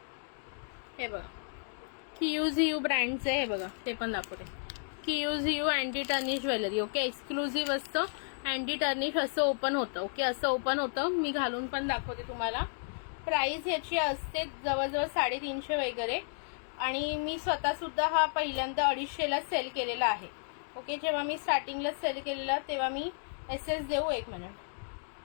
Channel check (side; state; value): right; silent; digital silence